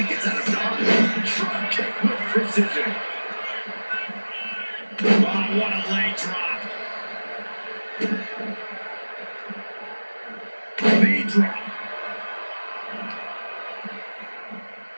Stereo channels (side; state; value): both; inverted; correlation -1.00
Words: gets out of dodge. Drop kick with precision. Oh, what a leg drop. Knee drop.